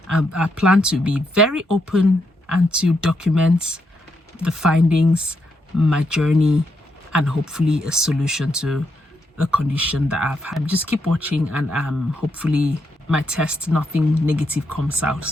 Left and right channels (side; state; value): both; normal; correlation 0.80